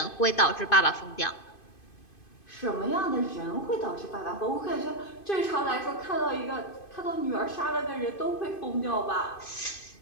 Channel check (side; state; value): right; late; 2.5 ms